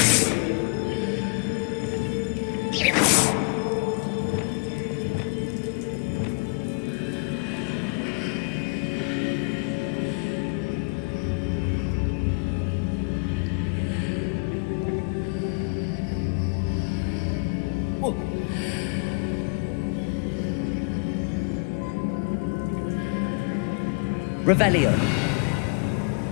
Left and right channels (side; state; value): right; quieter; 34.6 dB